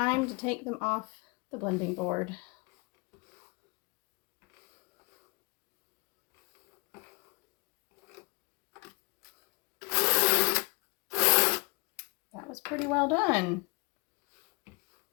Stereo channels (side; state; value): right; quieter; 29.9 dB